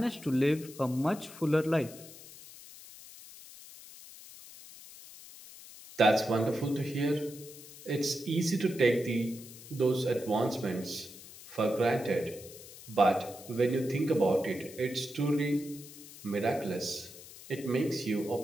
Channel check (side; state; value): left; noise; hiss, 17 dB below the sound